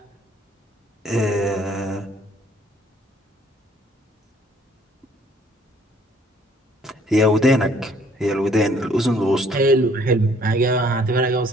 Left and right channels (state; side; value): normal; both; correlation 0.61